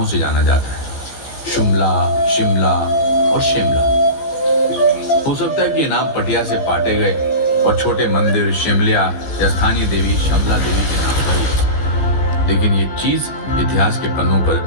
से जाना जाता है, शुमला, शिमला और शिमला। हो सकता है कि ये नाम पटिया से पाटे गए और छोटे मंदिर शिमलिया या स्थानीय देवी शमला देवी के नाम पर हुए, लेकिन ये चीज इतिहास के पन्नों पर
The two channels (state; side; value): late; right; 15 ms